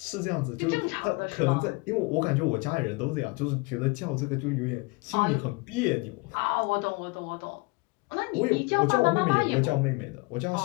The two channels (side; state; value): right; quieter; 26.7 dB